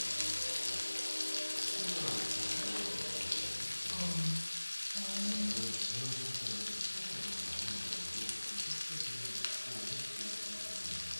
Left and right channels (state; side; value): inverted; both; correlation -1.00